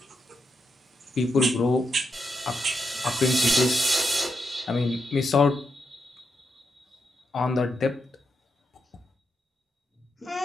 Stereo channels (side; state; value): both; normal; correlation 0.83